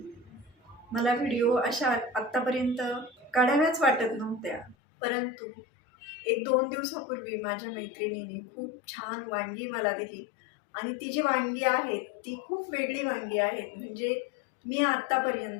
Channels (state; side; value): drops out; right; at 4.8 s